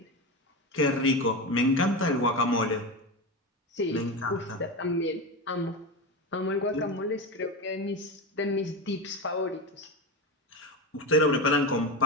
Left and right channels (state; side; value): normal; both; correlation 0.20